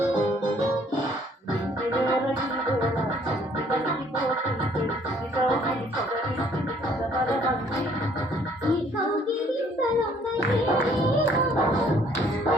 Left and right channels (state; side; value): normal; both; correlation 0.61